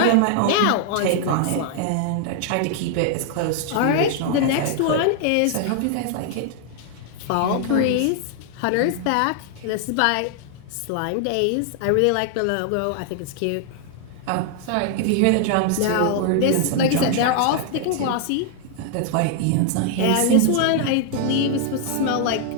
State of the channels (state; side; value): different; both; correlation 0.00